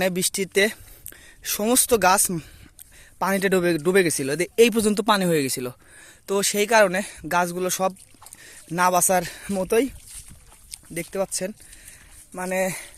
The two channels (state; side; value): identical; both; correlation 1.00